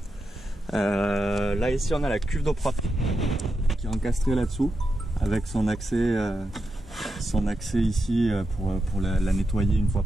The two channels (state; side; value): normal; both; correlation 0.87